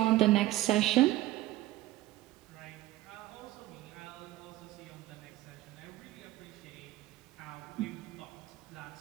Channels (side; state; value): left; quieter; 16.3 dB